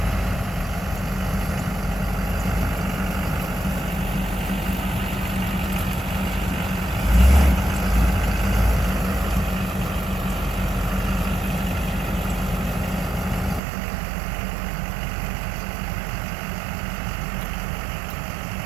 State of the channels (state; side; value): drops out; left; at 13.6 s